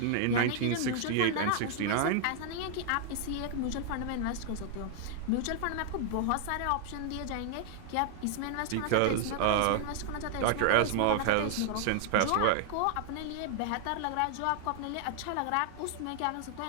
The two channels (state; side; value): different; both; correlation 0.00